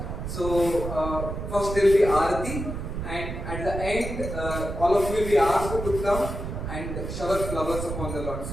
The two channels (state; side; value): noise; right; rumble, 6 dB below the sound